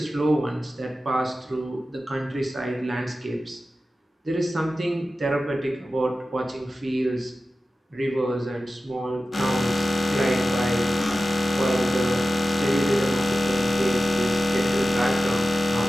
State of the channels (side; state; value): both; normal; correlation 0.94